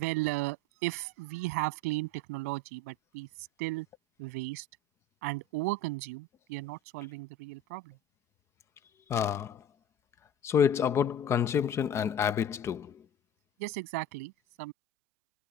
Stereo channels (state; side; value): normal; both; correlation 0.35